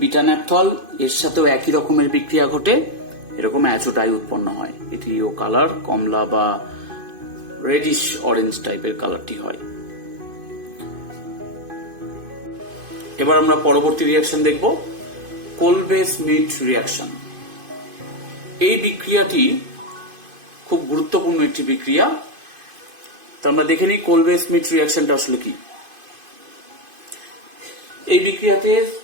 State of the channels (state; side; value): late; left; 2.5 ms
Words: বিটা ন্যাপথল, এর সাথেও একই রকমের বিক্রিয়া ঘটে, এরকম অ্যাজো ডাই উৎপন্ন হয়। এটিও কালার কমলা বা রেডিশ অরেঞ্জ টাইপের কালারটি হয়। এবার আমরা পরবর্তী রিয়াকশন দেখব, কোলবে স্মিথ রিয়াকশন। এই বিক্রিয়াটি খুব গুরুত্বপূর্ণ একটি বিক্রিয়া। তো আমরা দেখে নিই কোলবে স্মিথ রিয়াকশনটা আসলে কি। এই বিক্রিয়াতে